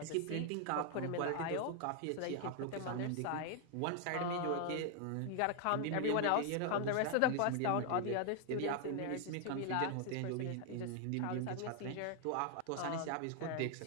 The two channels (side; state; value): both; different; correlation 0.00